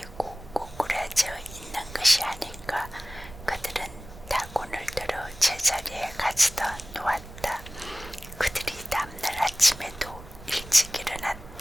꼬꾸라져 있는 것이 아닌가. 그들은 다곤을 들어 제자리에 가져다 놓았다. 그들이 다음날 아침에도 일찍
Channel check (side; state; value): right; noise; rumble, 16 dB below the sound